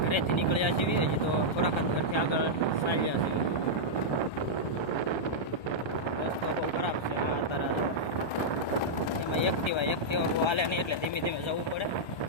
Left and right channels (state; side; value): late; right; 1.3 ms